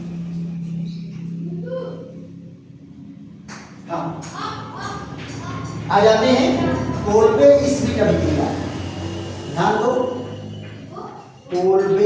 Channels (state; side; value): identical; both; correlation 1.00